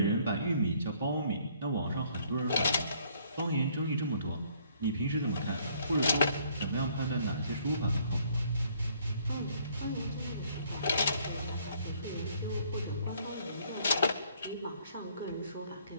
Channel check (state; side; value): inverted; both; correlation -0.63